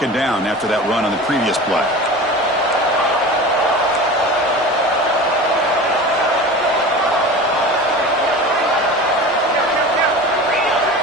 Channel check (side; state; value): right; noise; rumble, 30 dB below the sound